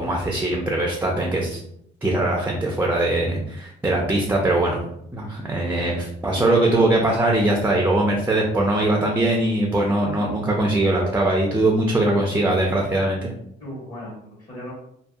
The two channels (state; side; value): normal; both; correlation 0.63